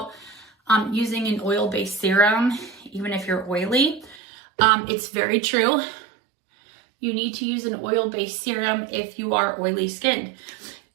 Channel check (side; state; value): left; drops out; at 4.2 s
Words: using an oil-based serum, even if you're oily. It's very true. You need to use an oil-based serum if you are oily skinned.